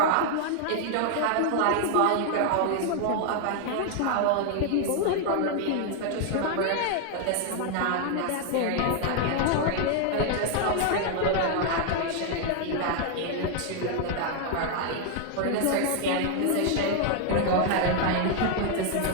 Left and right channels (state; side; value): different; both; correlation 0.00